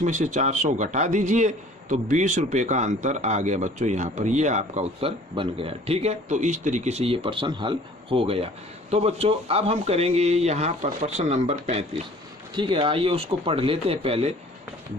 में से 400 घटा दीजिए, तो 20 रुपये का अंतर आ गया बच्चों यहाँ पर। ये आपका उत्तर बन गया, ठीक है। तो इस तरीके से ये प्रश्न हल हो गया। तो बच्चों अब हम करेंगे यहाँ पर प्रश्न नंबर 35, ठीक है। आइए उसको पढ़ लेते हैं पहले,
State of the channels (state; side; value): normal; both; correlation 0.51